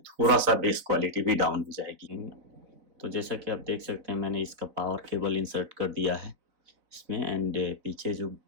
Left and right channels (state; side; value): late; left; 4.0 ms